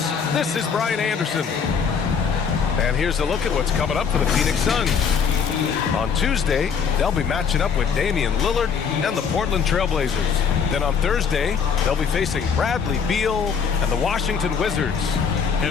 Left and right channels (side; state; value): right; quieter; 6.4 dB